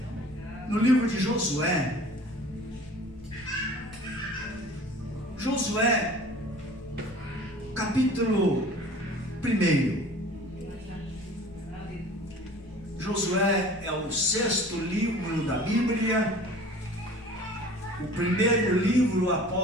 no livro de Josué. Josué, capítulo 1. Josué é o 6º livro da Bíblia, o primeiro livro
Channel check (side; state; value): left; noise; rumble, 21 dB below the sound